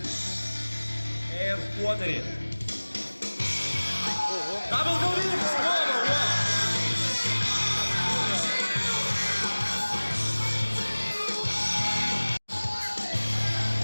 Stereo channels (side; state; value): both; inverted; correlation -1.00